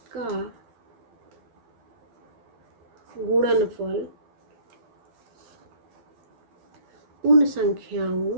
का गुणनफल उन संख्याओं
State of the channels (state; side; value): late; left; 12 ms